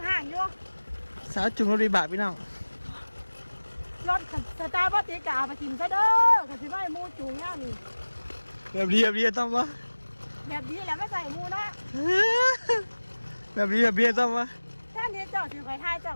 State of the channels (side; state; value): both; inverted; correlation -1.00